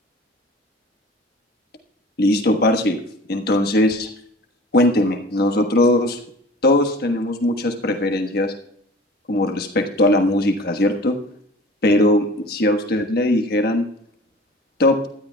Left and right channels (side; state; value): both; normal; correlation 0.43